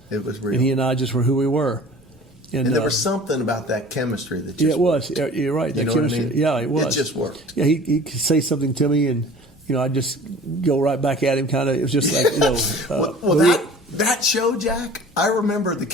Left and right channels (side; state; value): both; normal; correlation 0.45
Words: It was real. And he and I just were who we were. And there was something about that chemistry that just it was. You're right. That chemistry. What I mean? Yeah, it was. It just worked. Yeah, he could say something to me, and I'd just go right back at him. Kind of. It was just like that show, Jack. I remember the